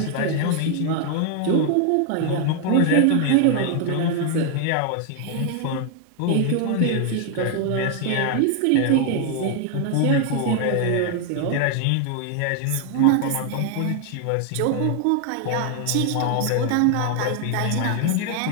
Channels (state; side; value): different; both; correlation 0.00